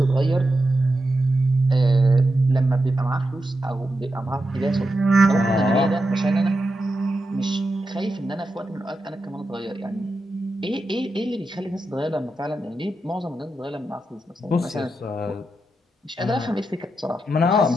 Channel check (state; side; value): normal; both; correlation 0.88